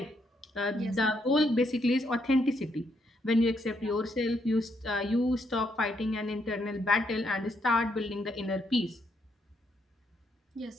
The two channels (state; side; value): normal; both; correlation 0.75